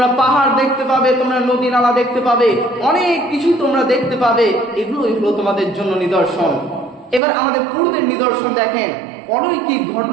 পাহাড় দেখতে পাবে, তোমরা নদী নালা দেখতে পাবে, অনেক কিছু তোমরা দেখতে পাবে। এগুলো তোমাদের জন্য নিদর্শন। এবার আমাদের পূর্বের নিদর্শন দেখেন, অলৌকিক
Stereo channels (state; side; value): drops out; left; at 7.2 s